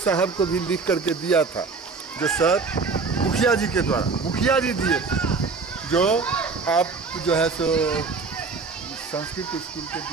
को भी लिख करके दिया था, जो सर मुखिया जी के द्वारा, मुखिया जी दिए थे, जो आप जो है सो संस्कृत स्कूल के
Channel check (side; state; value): left; quieter; 4.4 dB